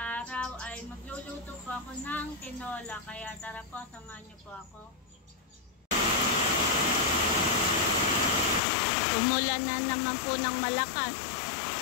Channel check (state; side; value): drops out; right; at 8.6 s